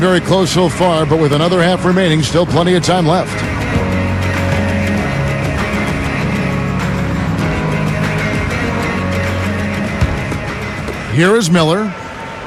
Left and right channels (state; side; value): identical; both; correlation 1.00